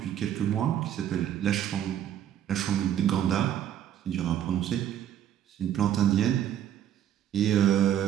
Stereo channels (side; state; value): left; quieter; 10.6 dB